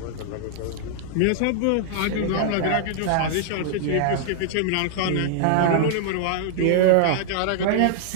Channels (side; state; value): both; different; correlation -0.01